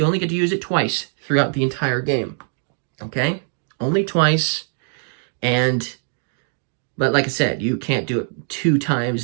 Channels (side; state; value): left; silent; 64 dB below the other